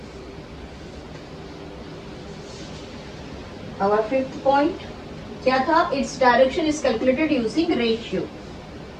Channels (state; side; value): identical; both; correlation 1.00